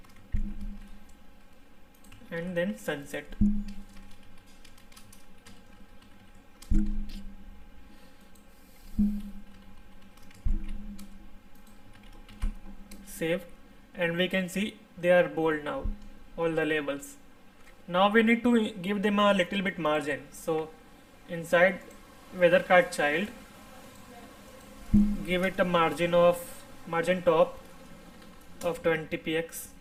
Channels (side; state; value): both; identical; correlation 1.00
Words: and then sunset. Save, and we can see they are bold now, all the labels. Now we need to give them a little bit margin. So inside weather card child, give it a margin top of 20 px